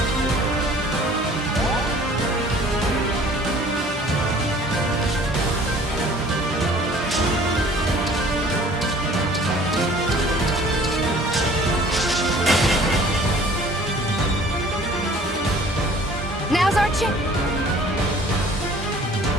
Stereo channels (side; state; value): both; normal; correlation 0.51